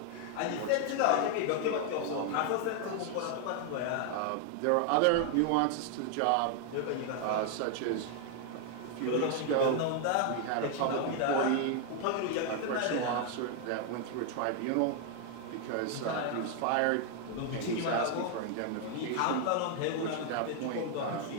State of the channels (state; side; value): different; both; correlation 0.00